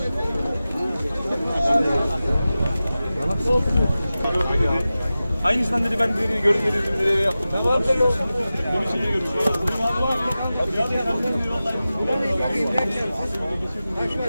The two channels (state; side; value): inverted; both; correlation -0.95